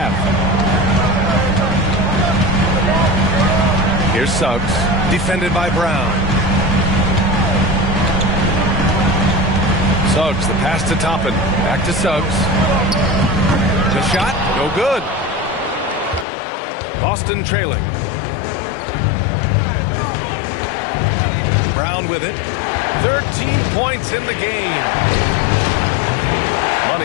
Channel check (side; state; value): right; drops out; at 16.2 s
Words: Here's Suggs. Defended by Brown. Suggs, the pass to Toppin. Back to Suggs. The shot, no good. Boston trailing. Brown with it. 13 points in the game.